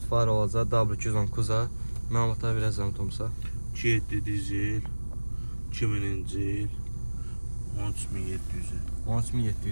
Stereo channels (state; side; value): inverted; both; correlation -1.00